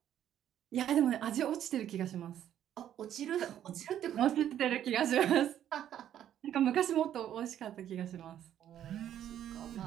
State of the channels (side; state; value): left; quieter; 10.8 dB